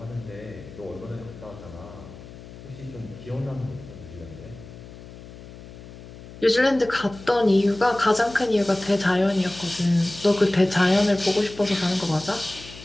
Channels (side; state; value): left; noise; hum, 16 dB below the sound